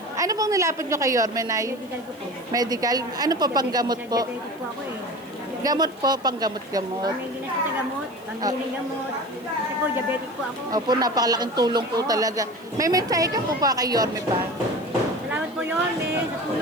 Ano pong nilapit niyo kay Yorme, Nay? Medical ko po. Medical? Ano po, panggamot po? Diabetic po ako eh. Gamot po, panggamot-gamot. May ginas ko sa gamot, pambiling gamot. Kasi po, diabetic po ako. Opo, napakalaking tulong po talaga. May mensahe ka po pa kay Yorme pa? Salamat po yun sa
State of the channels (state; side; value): noise; left; hiss, 27 dB below the sound